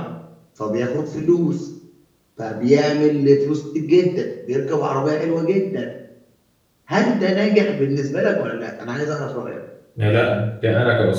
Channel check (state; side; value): identical; both; correlation 1.00